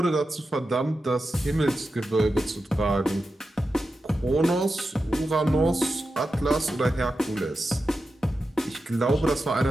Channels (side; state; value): both; normal; correlation 0.91